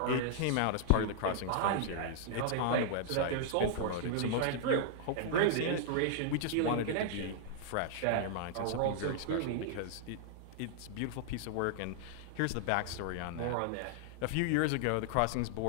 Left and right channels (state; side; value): different; both; correlation -0.01